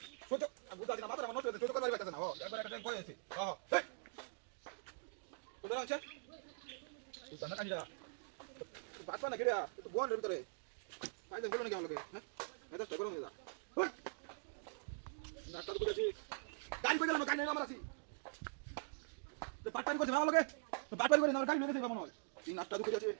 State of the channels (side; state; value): left; silent; digital silence